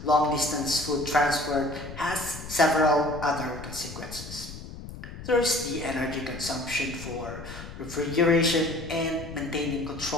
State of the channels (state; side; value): noise; left; rumble, 12 dB below the sound